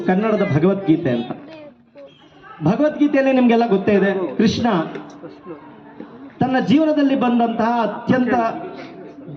ಕನ್ನಡದ ಭಗವದ್ಗೀತೆ ಅಂತ. ಭಗವದ್ಗೀತೆಯಲ್ಲಿ ನಿಮಗೆಲ್ಲ ಗೊತ್ತೇ ಇದೆ, ಕೃಷ್ಣ ತನ್ನ ಜೀವನದಲ್ಲಿ ಬಂದಂತಹ ಅತ್ಯಂತ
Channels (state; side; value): identical; both; correlation 1.00